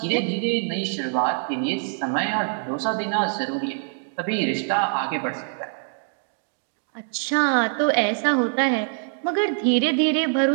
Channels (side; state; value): left; silent; 62 dB below the other